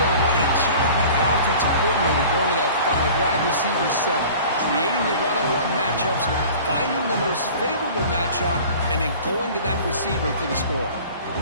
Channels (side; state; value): both; inverted; correlation -0.43